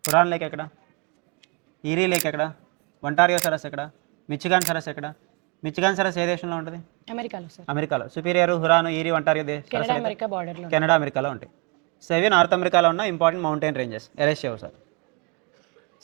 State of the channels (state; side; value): quieter; left; 32.4 dB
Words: హురాన్ లేక్ ఎక్కడ? ఈరీ లేక్ ఎక్కడ? ఒంటారియో సరస్ ఎక్కడ? మిచిగాన్ సరస్ ఎక్కడ? మిచిగాన్ సరస్ ఏ దేశంలో ఉంటుంది? అమెరికాలో సార్. అమెరికాలో. Superior, Huron, Erie, Ontario Canada America బార్డర్లో. కెనడా అమెరికాలో ఉంటాయి. సో ఇవి నార్త్ అమెరికాలో ఉన్న ఇంపార్టెంట్ మౌంటైన్ రేంజెస్. ఎరేస్ చేయవు sir.